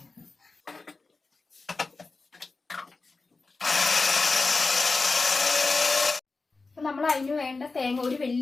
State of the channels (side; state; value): right; quieter; 3.8 dB